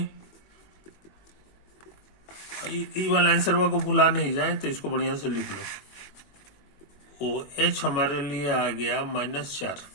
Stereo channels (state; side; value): late; right; 21 ms